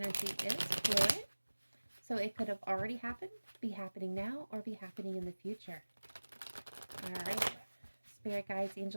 is fluid, so it could have already happened, be happening now, or be happening in the future. All right. Spirit guides,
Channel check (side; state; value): both; inverted; correlation -1.00